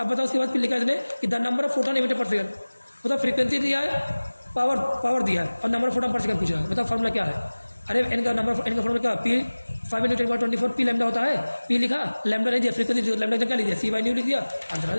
बताओ उसके बाद फिर लिखा इसने कि the number of photon emitted पर सेकंड, बताओ फ्रीक्वेंसी दिया है, पावर दिया है और number of photon per second पूछ रहा है, बताओ फॉर्मूला क्या है। अरे एन का फॉर्मूला क्या पी 5 × 10⁻24 पी लैम्डा होता है, पी लिखा लैम्डा नहीं दिया, फ्रीक्वेंसी लैम्डा क्या लिख दिया C/ν लिख दिया, आंसर आ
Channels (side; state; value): both; inverted; correlation -1.00